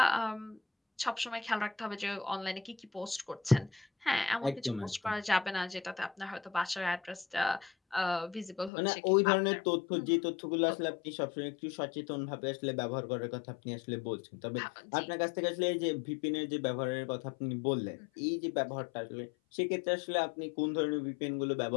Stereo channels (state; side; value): drops out; right; at 8.7 s